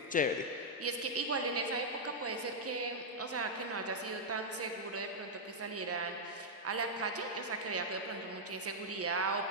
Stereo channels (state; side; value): normal; both; correlation -0.05